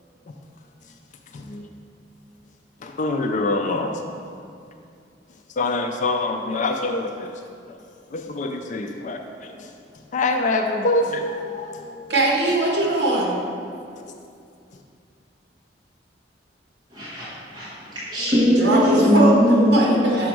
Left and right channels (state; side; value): normal; both; correlation 0.39